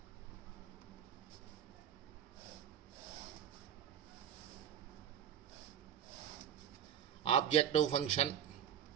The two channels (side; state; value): left; quieter; 9.3 dB